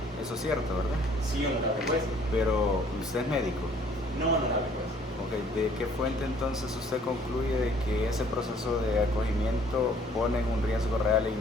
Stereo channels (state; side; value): normal; both; correlation 0.58